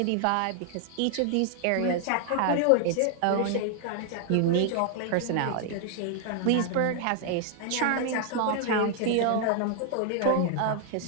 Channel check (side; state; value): both; different; correlation 0.00